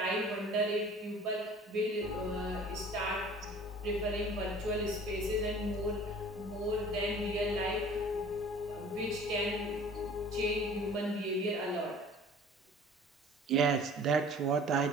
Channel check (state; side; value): normal; both; correlation 0.47